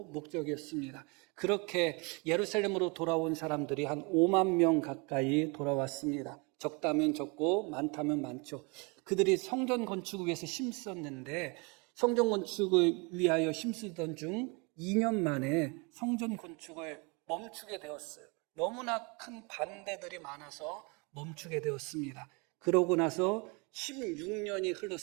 목적이었습니다. 그렇게 예루살렘으로 돌아온 사람들이 한 5만 명 가까이 돌아왔습니다. 적다면 적고 많다면 많죠. 그들이 성전 건축을 위해서 힘썼는데 성전 건축을 위하여 힘쓰던 중 2년 만에 성전 건축을 멈추게 되었어요. 너무나 큰 반대들이 많아서 멈추게 되었습니다. 그러고 나서 16년이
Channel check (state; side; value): quieter; left; 30.4 dB